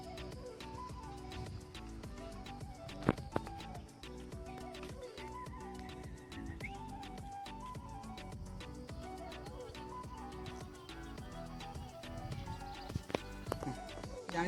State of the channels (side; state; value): both; identical; correlation 1.00